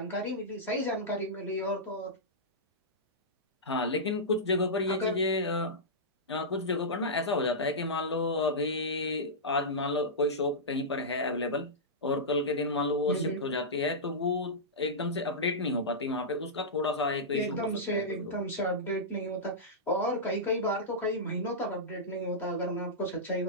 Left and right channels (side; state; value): both; normal; correlation -0.14